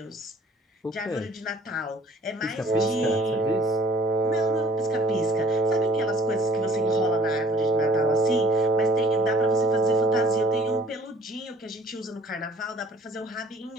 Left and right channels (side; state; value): both; normal; correlation 0.55